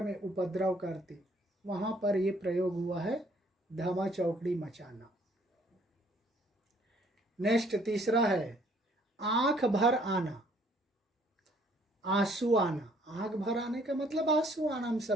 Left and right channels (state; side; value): normal; both; correlation 0.62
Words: में उपद्रव करते, वहां पर ये प्रयोग हुआ है, धमा चौकड़ी मचाना। नेक्स्ट तीसरा है, आंख भर आना, आंसू आना। आंख भर आने का मतलब आंसू आना, हम